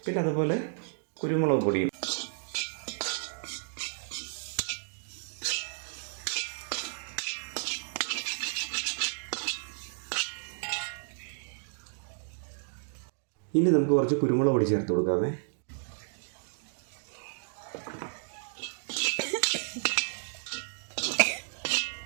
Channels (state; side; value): silent; left; digital silence